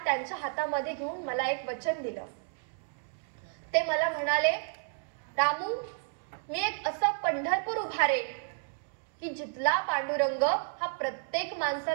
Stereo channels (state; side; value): silent; left; 57 dB below the other